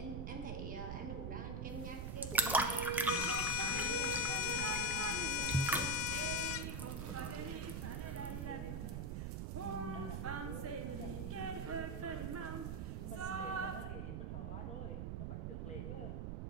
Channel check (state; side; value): noise; right; rumble, 3 dB below the sound